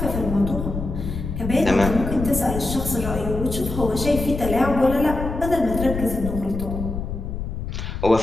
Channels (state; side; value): noise; left; rumble, 5 dB below the sound